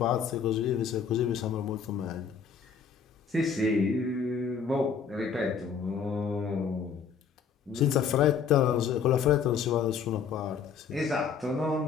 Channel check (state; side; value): quieter; right; 6.5 dB